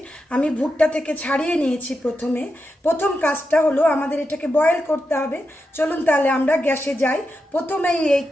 आमी भुट्टा थेके छाड़िए नियेछि। प्रथम काजटा हलो आमादेर एटाके बয়েল करते हबे। चलुन ताहले आमरा ग्यासे जाई, प्रथमेई एई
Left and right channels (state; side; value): normal; both; correlation 0.87